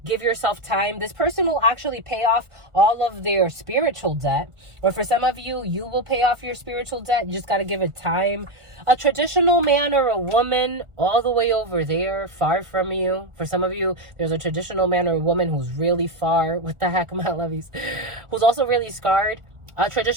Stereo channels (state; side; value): late; left; 1.4 ms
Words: Give yourself time. This person will actually pay off all of their spiritual debt. Or for some of you, you will pay off your spiritual debt. You just got to give it time. A traditional man or a woman all the way over there, far from you. For some of you, there's a traditional man or a woman who's really far. What the heck, my lovies? Who's also really scarred. A